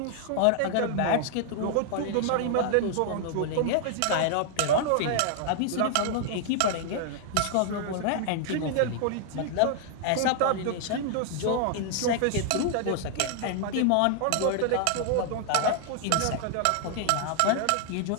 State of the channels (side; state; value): both; different; correlation 0.00